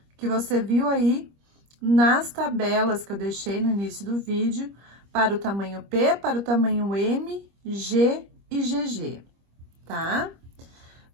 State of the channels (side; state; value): left; late; 25 ms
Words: que você viu aí nas tabelas que eu deixei no início do vídeo, para o tamanho P, para o tamanho M, G e GG, tá?